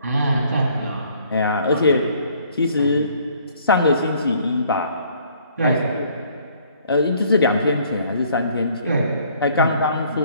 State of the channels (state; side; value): inverted; both; correlation -0.60